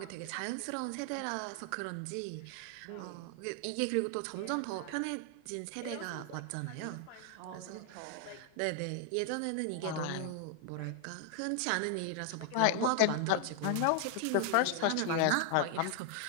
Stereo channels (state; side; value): different; both; correlation 0.00